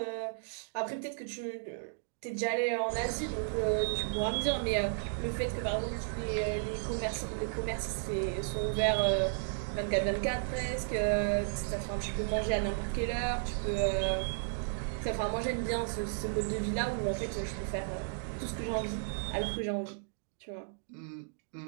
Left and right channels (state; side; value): silent; left; digital silence